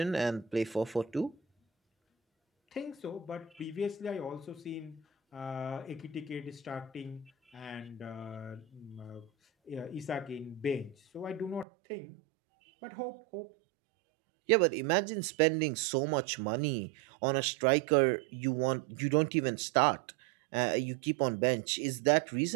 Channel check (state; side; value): drops out; left; at 11.7 s